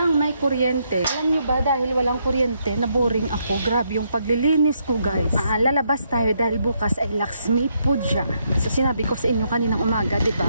may kuryente. Alam nyo ba, dahil walang kuryente, naboring ako. Grabe yung paglilinis ko, guys. Lalabas tayo dahil bukas ay Lakshmi Puja. So, sinabi ko sa inyo kaninang umaga,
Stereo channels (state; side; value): inverted; both; correlation -0.76